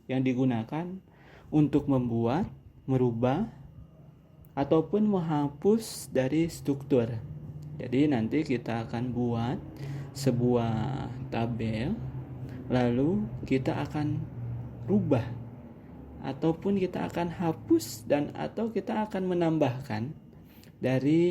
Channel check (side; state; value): both; identical; correlation 1.00